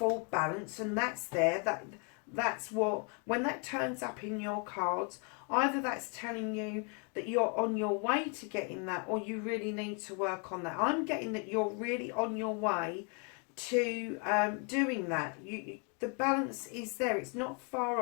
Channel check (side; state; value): right; quieter; 37.0 dB